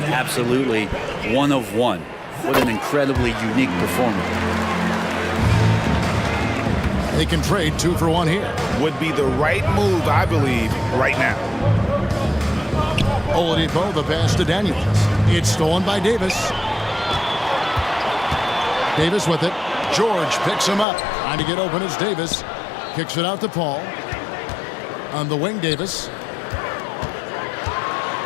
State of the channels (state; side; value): drops out; right; at 20.9 s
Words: absolutely one of one. What an incredibly unique performer. They can trade 2 for 1 here. Would be the right move, I believe, right now. Oladipo, the pass to Daniels. It's stolen by Davis. Davis with it. George picks him up. Trying to get open is Davis. Kicks it out to Paul. On the wing, Davis.